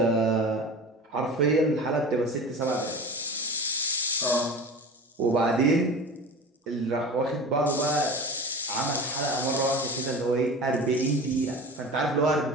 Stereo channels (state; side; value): normal; both; correlation 0.33